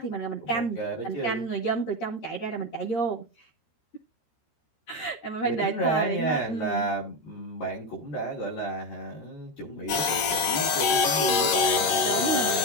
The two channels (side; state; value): right; late; 13 ms